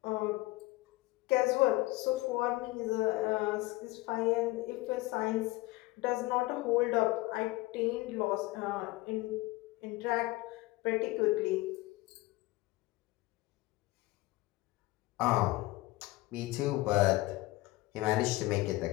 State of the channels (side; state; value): right; quieter; 19.7 dB